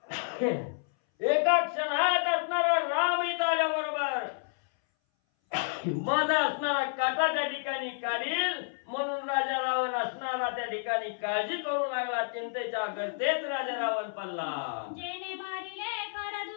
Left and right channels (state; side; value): silent; right; 58 dB below the other